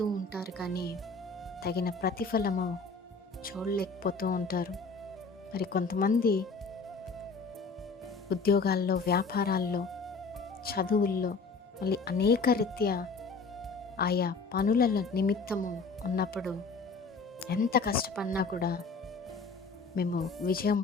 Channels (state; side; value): quieter; right; 4.3 dB